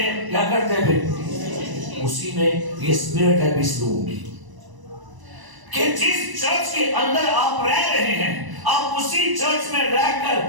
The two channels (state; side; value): late; left; 1.0 ms